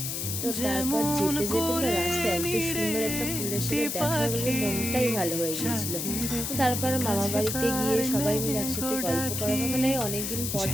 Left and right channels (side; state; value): left; noise; hiss, 3 dB below the sound